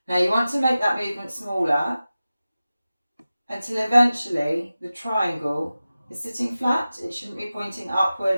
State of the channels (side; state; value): both; inverted; correlation -0.95